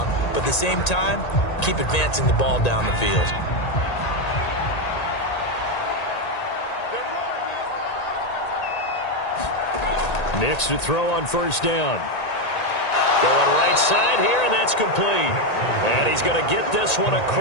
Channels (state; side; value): late; right; 1.8 ms